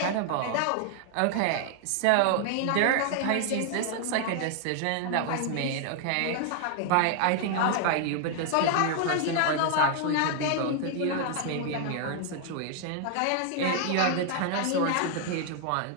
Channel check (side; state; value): both; different; correlation 0.00